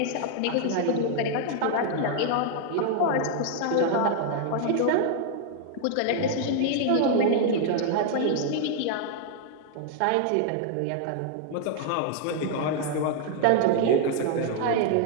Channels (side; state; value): both; different; correlation 0.00